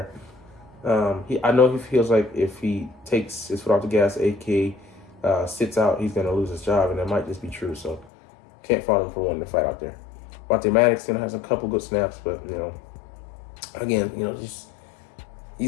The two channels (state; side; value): drops out; right; at 8.1 s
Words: I know he feels like if he takes his foot off the gas, aka sits out, he's gonna lose his job, and that might just be true. So can't fault him for wanting to fight out there. Monte Maddox has a couple good snaps, but again, just